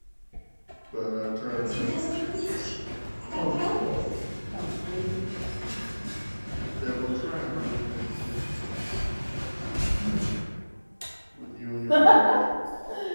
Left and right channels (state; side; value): inverted; both; correlation -1.00